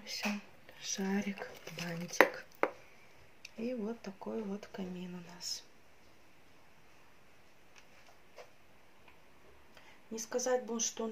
все. Шарик, бантик. И вот такой вот камин у нас. Не сказать бы, что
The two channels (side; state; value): both; identical; correlation 1.00